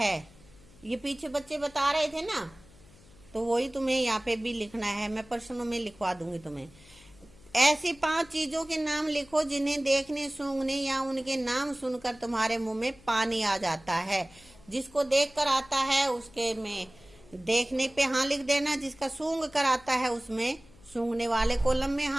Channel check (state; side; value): noise; left; hum, 25 dB below the sound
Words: ये पीछे बच्चे बता रहे थे ना, तो वही तुम्हें यहाँ पे भी लिखना है। मैं प्रश्नों में लिखवा दूंगी तुम्हें। ऐसी 5 चीजों के नाम लिखो जिन्हें देखने, सूंघने या उनके नाम सुनकर तुम्हारे मुंह में पानी आ जाता है। जिसको देख कर आता है उसके में देखने पे हाँ लिख देना, जिसका सूंघ कर आता है उसमें सूंघने वाले कॉलम में